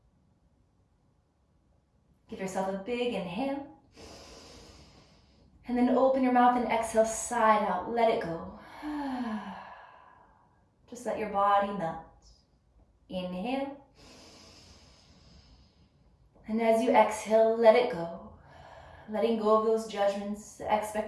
Give yourself a big inhale. And then open your mouth and exhale, side out, let it go. Just let your body melt. Inhale. And as you exhale, let it go. Letting go of those judgments, the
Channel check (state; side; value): identical; both; correlation 1.00